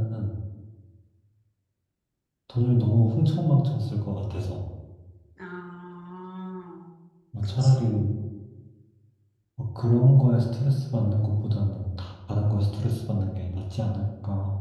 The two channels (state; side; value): identical; both; correlation 1.00